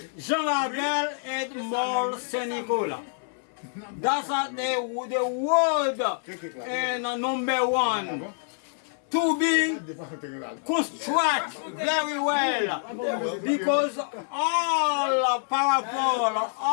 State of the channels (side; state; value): right; silent; 60 dB below the other